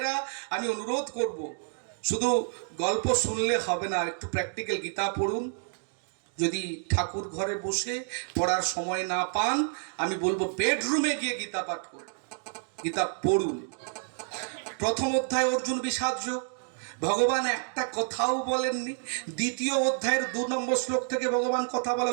আমি অনুরোধ করব, শুধু গল্প শুনলে হবে না, একটু প্র্যাকটিক্যাল গীতা পড়ুন। যদি ঠাকুর ঘরে বসে পড়ার সময় না পান, আমি বলবো বেডরুমে গিয়ে গীতা পাঠ করুন, গীতা পড়ুন। প্রথম অধ্যায় অর্জুন বিষাদ যোগ, ভগবান একটা কথাও বলেননি। দ্বিতীয় অধ্যায়ের 2 নম্বর শ্লোক থেকে ভগবান কথা বলা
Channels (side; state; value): left; silent; digital silence